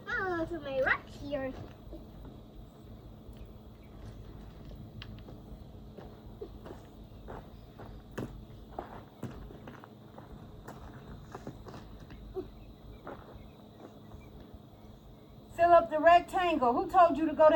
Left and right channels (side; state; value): both; identical; correlation 1.00